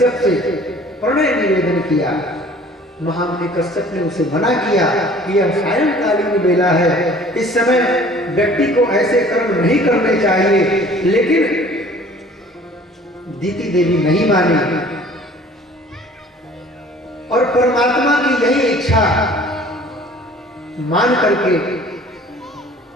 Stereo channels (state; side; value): normal; both; correlation 0.51